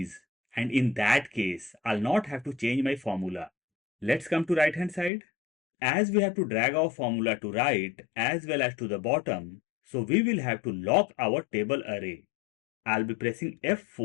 and in that case, I'll not have to change my formula. Let's come to right hand side. As we have to drag our formula to right as well as to the bottom, so we will have to lock our table array. I'll be pressing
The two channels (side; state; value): right; drops out; at 5.1 s